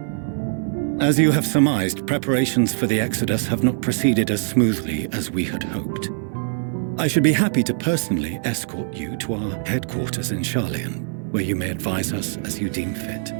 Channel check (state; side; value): silent; left; 64 dB below the other